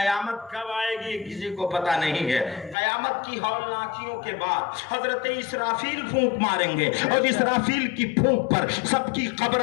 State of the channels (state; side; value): drops out; right; at 2.8 s